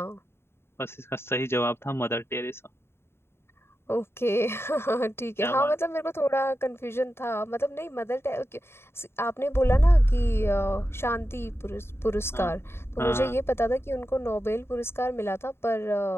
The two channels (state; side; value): late; right; 0.12 ms